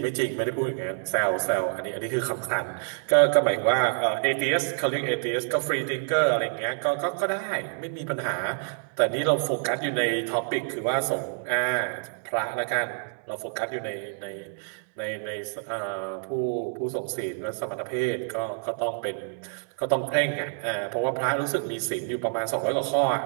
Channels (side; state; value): left; silent; digital silence